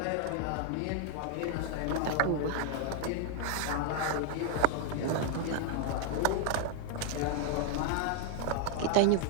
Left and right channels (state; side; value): different; both; correlation 0.00